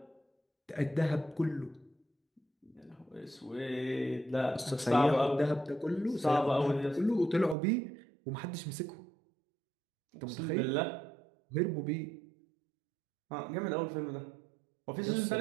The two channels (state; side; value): drops out; left; at 7.6 s